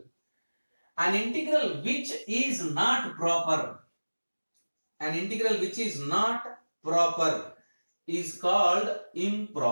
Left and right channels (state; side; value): inverted; both; correlation -1.00